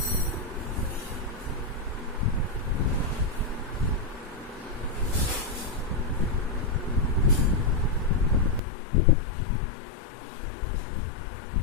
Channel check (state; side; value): drops out; right; at 8.6 s